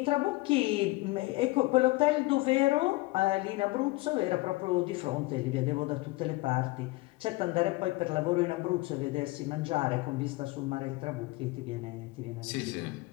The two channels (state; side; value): quieter; right; 21.7 dB